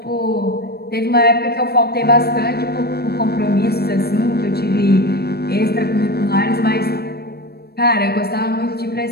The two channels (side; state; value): right; late; 0.46 ms